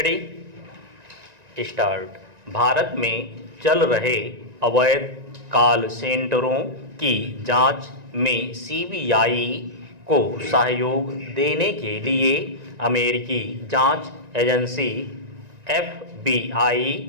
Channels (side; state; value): left; late; 1.9 ms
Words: start. Bharat में चल रहे अवैध कॉल सेंटरों की जांच में सीबीआई को सहयोग देने के लिए अमेरिकी जांच एजेंसी एफबीआई